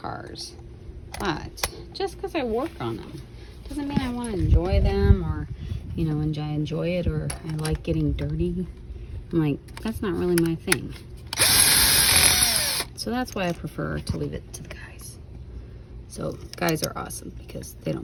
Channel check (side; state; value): both; identical; correlation 1.00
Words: but just because I work on them doesn't mean I want to enjoy them, or, you know, I enjoy it, or I like getting dirty. I'm like, that's not really my thing. So that's why I prefer to leave it to the guys. So guys are awesome because they